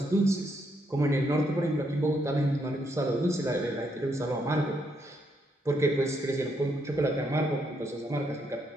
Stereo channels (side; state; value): both; normal; correlation 0.76